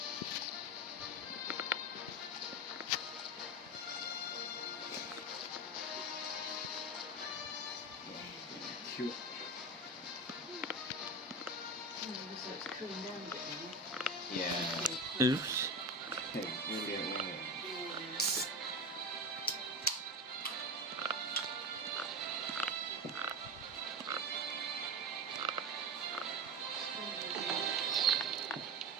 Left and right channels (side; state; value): both; normal; correlation 0.22